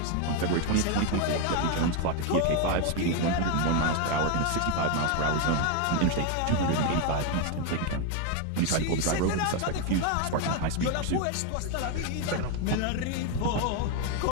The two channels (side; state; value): both; different; correlation 0.01